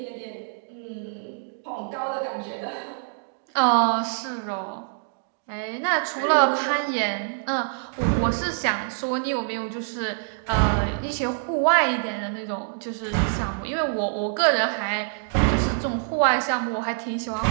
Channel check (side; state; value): left; silent; digital silence